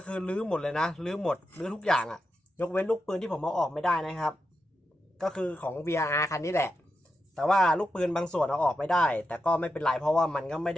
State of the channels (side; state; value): both; normal; correlation 0.87